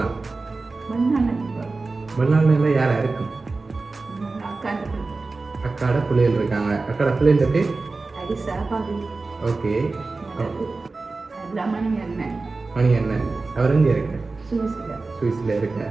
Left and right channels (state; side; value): quieter; left; 3.7 dB